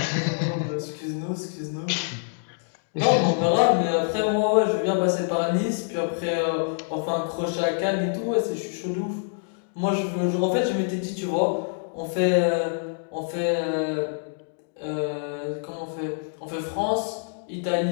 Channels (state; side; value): silent; right; digital silence